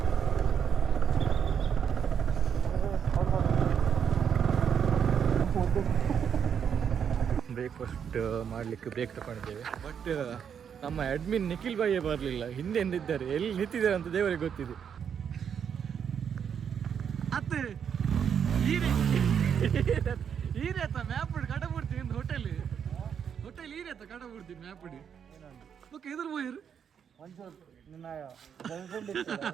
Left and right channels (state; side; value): quieter; left; 7.8 dB